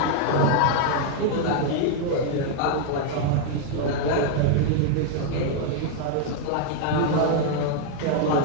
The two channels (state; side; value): different; both; correlation 0.00